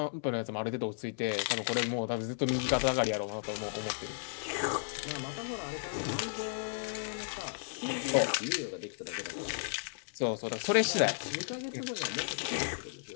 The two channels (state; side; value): silent; right; 55 dB below the other